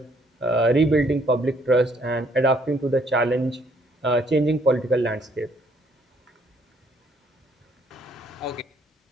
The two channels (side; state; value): both; normal; correlation 0.66